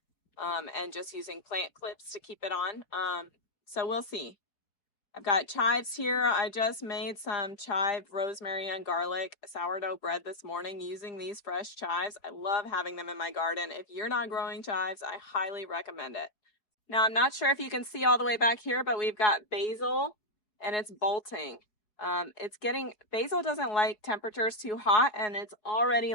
and just using plant clips to keep it on. So we'll see. I've got chives here. I just made some chive, rosemary, and garlic sourdough bread this morning using these fresh chives. I love having them in my garden. If you're not growing chives, I highly recommend it. Now, I'm not sure if you can see all the way back here, but we've got basil and it's bolting. Basil doesn't like temperatures too hot, and it's already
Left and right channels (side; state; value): right; late; 4.7 ms